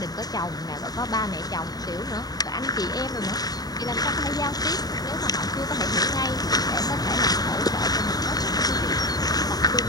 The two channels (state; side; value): late; right; 0.18 ms